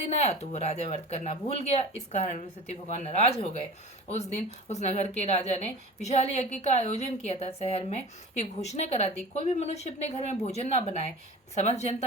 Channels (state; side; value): normal; both; correlation 0.37